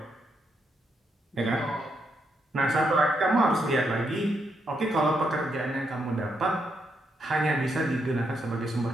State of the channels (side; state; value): both; normal; correlation 0.79